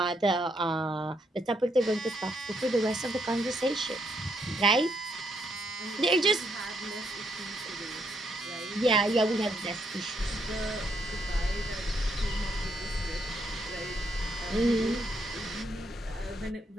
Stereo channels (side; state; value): both; normal; correlation 0.74